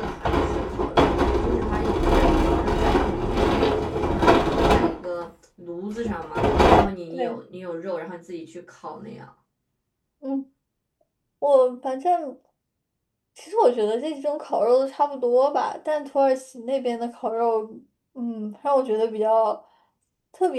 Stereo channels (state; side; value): identical; both; correlation 1.00